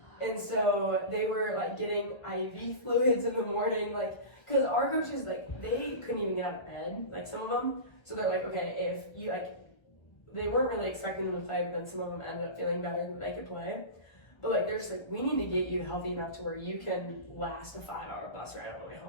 And so they were like getting IV fluids in the morning, like, because our coaches, like, they couldn't even get out of bed, like some of them. So they're like, okay, if you like, they weren't really expecting them to play, but then some of them ended up feeling better that they could play. But like, they're just like, we need to get you healthy enough to where you can last a 5-hour bus ride on the way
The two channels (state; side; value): late; right; 1.1 ms